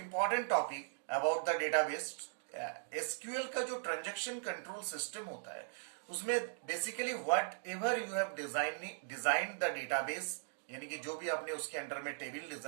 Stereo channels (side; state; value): left; silent; digital silence